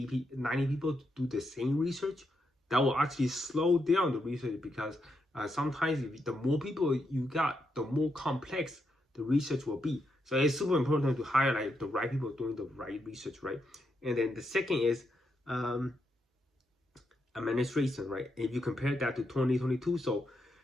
people, 90 people to do the same research. That will actually slow down the research, because Sometimes if the more people you got, the more complex the research will be. So it's super important to hire like the right people doing the right research, right? And then the second is administration, right? If you compare that to 2022, so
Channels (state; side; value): normal; both; correlation 0.82